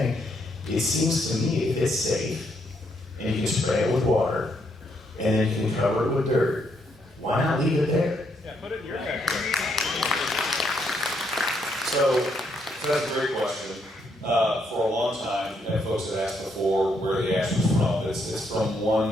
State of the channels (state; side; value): normal; both; correlation 0.75